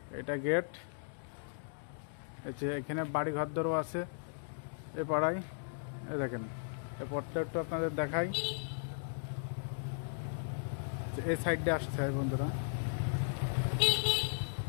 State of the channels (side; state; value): right; silent; digital silence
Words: এটা গেট, এখানে বাড়ি ঘরদরও আছে এ পাড়ায়। এই দেখেন, এই পথটা একটু আপনাদের দেখাই। এই সাইডে আসতে হয় বন্ধুরা।